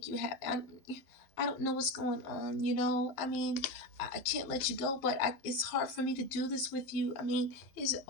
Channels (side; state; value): right; late; 11 ms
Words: you happy. I don't know what's going on, I mean, I can't let you go, but it's hard for me to do this with you. I mean, is it